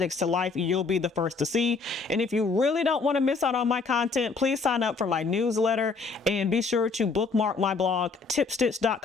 to life, you'll be the first to see. And if you really don't want to miss out on my content, please sign up for my newsletter and be sure to bookmark my blog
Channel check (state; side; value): quieter; right; 4.4 dB